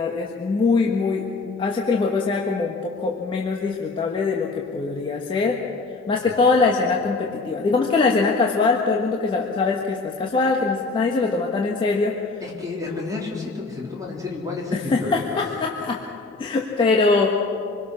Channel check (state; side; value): quieter; right; 3.7 dB